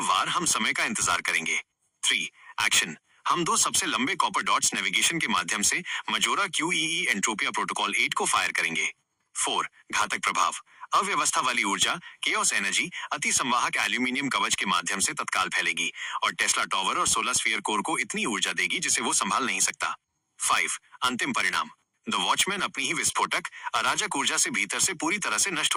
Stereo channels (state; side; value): identical; both; correlation 1.00